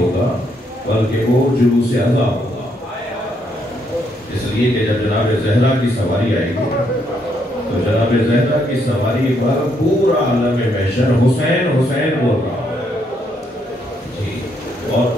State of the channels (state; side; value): normal; both; correlation 0.74